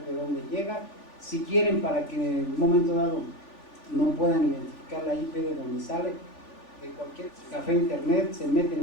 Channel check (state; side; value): late; right; 3.4 ms